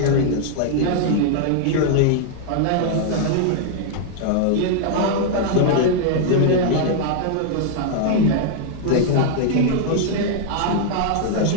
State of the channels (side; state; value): both; different; correlation 0.00